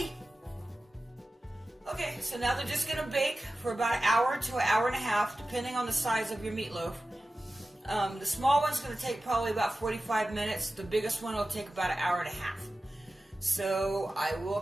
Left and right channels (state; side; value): normal; both; correlation 0.94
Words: Okay, so now they're just going to bake for about an hour to an hour and a half, depending on the size of your meatloaf. The small one's going to take probably about 45 minutes. The biggest one will take about an hour and a half. So I will